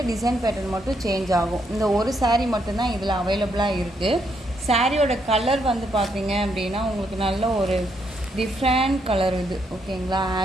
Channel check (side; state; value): both; normal; correlation 0.76